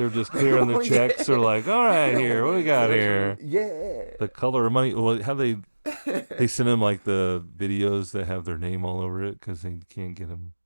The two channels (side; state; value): both; inverted; correlation -1.00